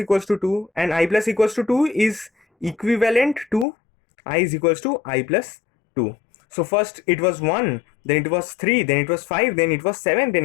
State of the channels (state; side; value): drops out; right; at 3.7 s